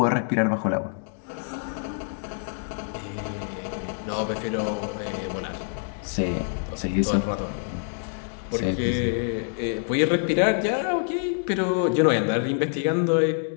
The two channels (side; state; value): right; silent; 61 dB below the other